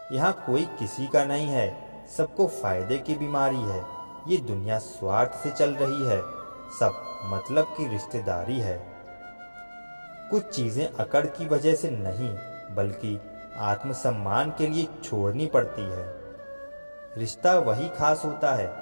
यहाँ कोई किसी का नहीं है, सबको फायदे की बीमारी है। ये दुनिया स्वार्थ से चल रही है, सब मतलब की रिश्तेदारी है। कुछ चीज़ें अकड़ की वजह से नहीं बल्कि आत्मसम्मान के लिए छोड़नी पड़ती है। रिश्ता वही खास होता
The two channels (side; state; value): both; inverted; correlation -1.00